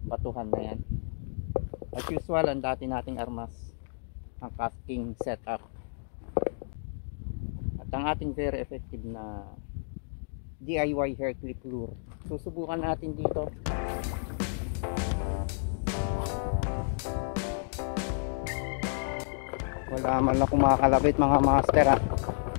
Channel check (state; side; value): silent; right; digital silence